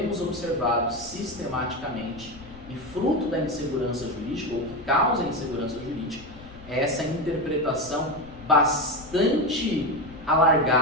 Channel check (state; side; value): noise; left; rumble, 19 dB below the sound